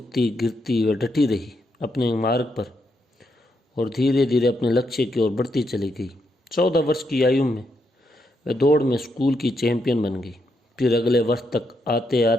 गिरती वह डटी रही अपने मार्ग पर और धीरे धीरे अपने लक्ष्य की ओर बढ़ती चली गई। 14 वर्ष की आयु में वह दौड़ में स्कूल की चैंपियन बन गई। फिर अगले वर्ष तक आते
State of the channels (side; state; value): both; normal; correlation 0.80